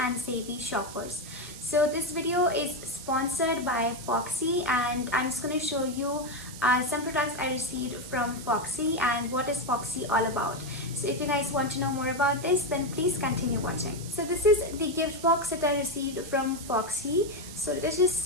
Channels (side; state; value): right; noise; hiss, 13 dB below the sound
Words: and savvy shoppers. So this video is sponsored by Foxy, and I'm just going to show you some products I received from Foxy and what is Foxy all about. So if you guys want to know more about this, then please continue watching. So this is the gift box that I received from Foxy. So let's just